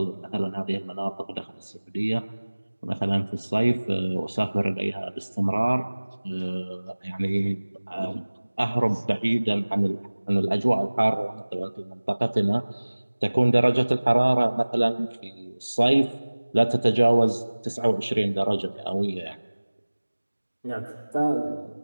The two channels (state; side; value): inverted; both; correlation -1.00